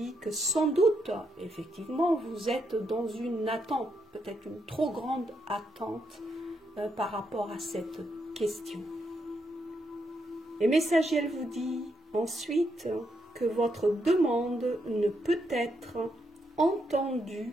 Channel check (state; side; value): normal; both; correlation 0.79